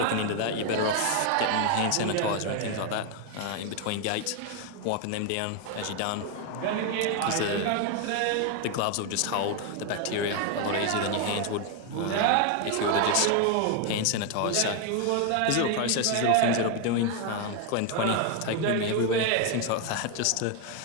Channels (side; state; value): both; different; correlation 0.01